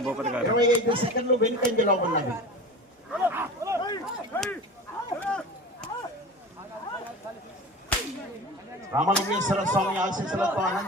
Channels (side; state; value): both; normal; correlation 0.34